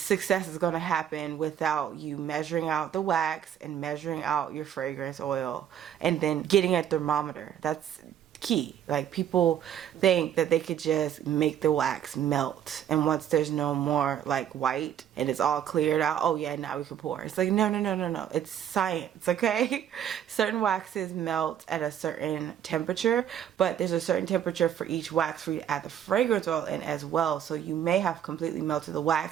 is going to happen without you measuring out the wax and measuring out your fragrance oil and then getting a thermometer. That's key. Like, people think that they could just make the wax melt, and once there's no more like white and it's all cleared out, oh yeah, now we can pour. It's like, no, it's science, okay? Certain waxes melt at a certain temperature, but there's a certain temperature for each wax for you to add the fragrance oil in as well. So you may have completely melted the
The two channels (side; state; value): left; quieter; 9.8 dB